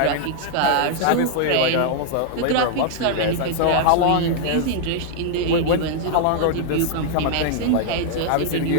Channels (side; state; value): both; different; correlation -0.01